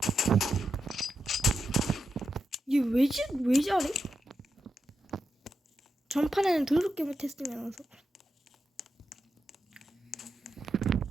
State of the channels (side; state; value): both; normal; correlation 0.87